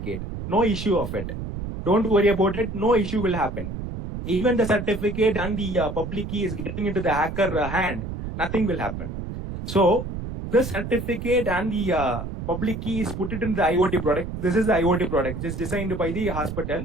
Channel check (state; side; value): noise; right; rumble, 7 dB below the sound